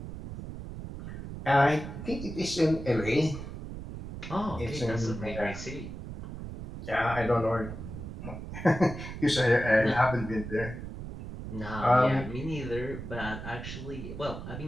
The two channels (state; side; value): noise; right; rumble, 9 dB below the sound